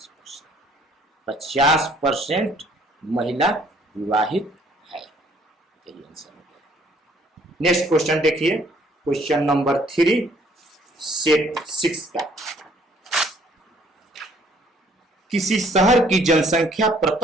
50% महिला विवाहित है, यही आंसर हो गया। नेक्स्ट क्वेश्चन देखिए, क्वेश्चन नंबर 3 सेट 6 का। किसी शहर की जनसंख्या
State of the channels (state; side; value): normal; both; correlation 0.61